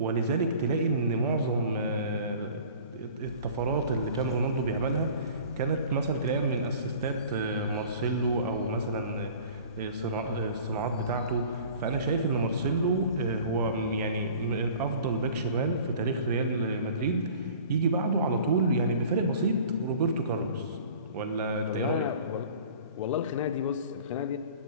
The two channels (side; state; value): both; inverted; correlation -0.46